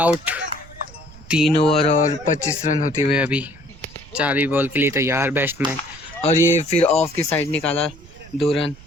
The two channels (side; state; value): right; noise; rumble, 20 dB below the sound